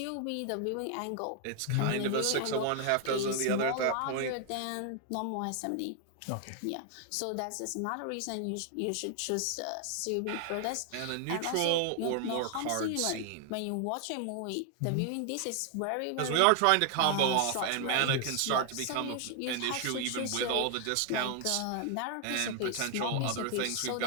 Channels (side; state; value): both; different; correlation 0.00